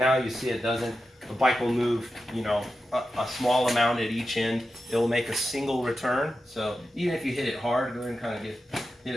you see it doesn't. The bike will move, a small amount at each end. It will make a single return. So even if you hit it hard, go ahead and kind of hit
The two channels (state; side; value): normal; both; correlation 0.91